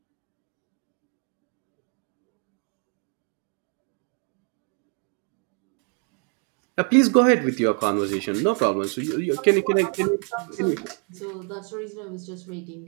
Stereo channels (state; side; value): quieter; left; 39.3 dB